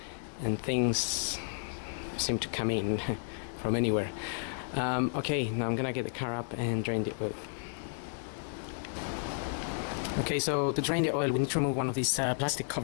and things seem to come in from anywhere. Okay, now I'm gonna get the car up and drain the oil. Okay, so to drain the oil we need to remove one of these plastic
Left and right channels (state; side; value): silent; right; 56 dB below the other